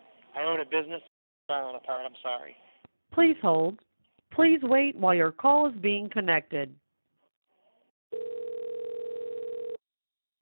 I own a business. Falling apart. I'm sorry. Please hold. Please wait while your call is being connected.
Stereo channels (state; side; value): inverted; both; correlation -1.00